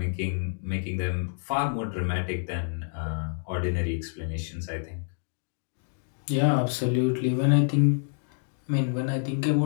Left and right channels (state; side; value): silent; right; digital silence